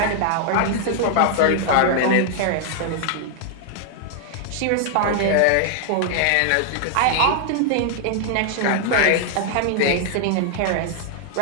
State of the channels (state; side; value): different; both; correlation 0.00